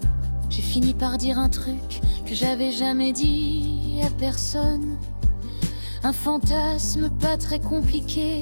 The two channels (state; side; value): inverted; both; correlation -1.00